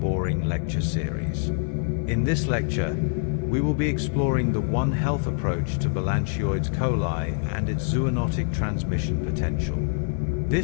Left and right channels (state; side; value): silent; right; 61 dB below the other